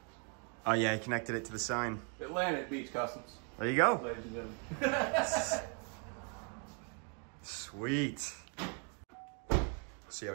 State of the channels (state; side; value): quieter; left; 39.4 dB